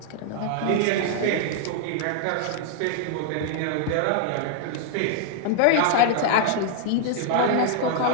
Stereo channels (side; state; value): both; different; correlation -0.01